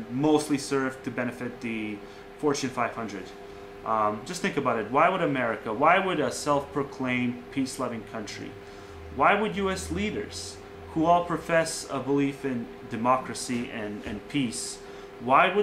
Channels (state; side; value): identical; both; correlation 1.00